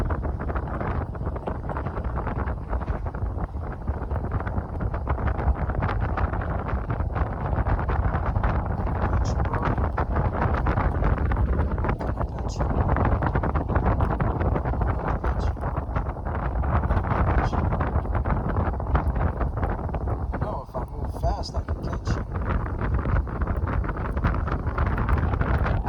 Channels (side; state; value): both; identical; correlation 1.00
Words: fast I can catch you.